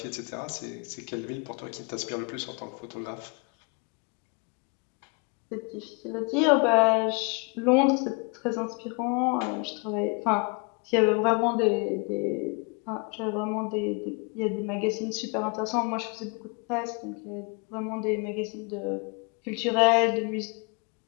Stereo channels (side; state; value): right; quieter; 33.8 dB